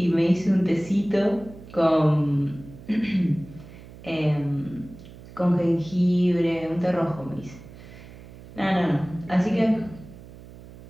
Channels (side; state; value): right; noise; hum, 18 dB below the sound